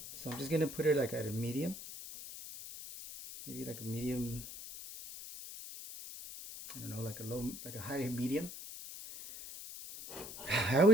So I'm just gonna put it like at a medium. Maybe like a medium, I don't know, like a low, like a high medium. I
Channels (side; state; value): left; noise; hiss, 11 dB below the sound